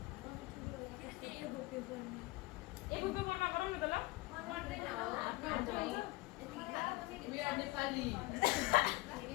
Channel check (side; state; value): right; quieter; 21.0 dB